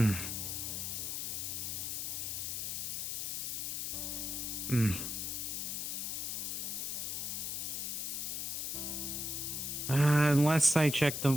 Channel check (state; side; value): noise; left; hiss, 2 dB below the sound